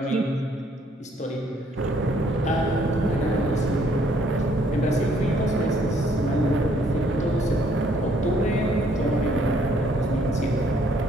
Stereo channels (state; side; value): normal; both; correlation 0.65